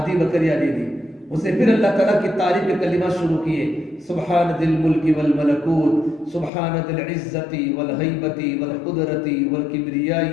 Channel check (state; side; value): drops out; right; at 6.5 s